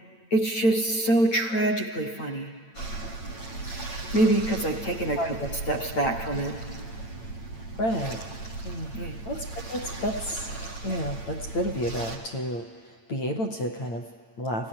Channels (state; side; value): late; right; 8.9 ms